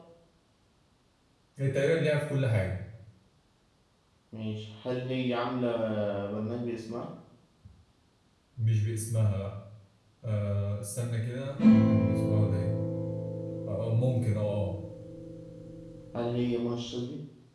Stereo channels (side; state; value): both; identical; correlation 1.00